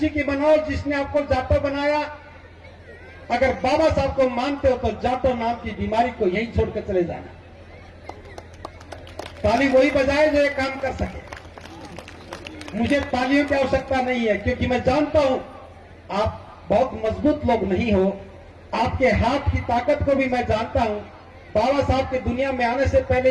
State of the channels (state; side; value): identical; both; correlation 1.00